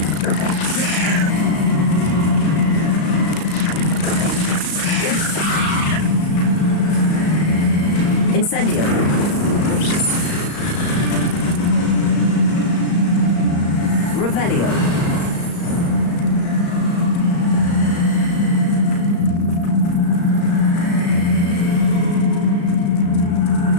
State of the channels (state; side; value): late; right; 35 ms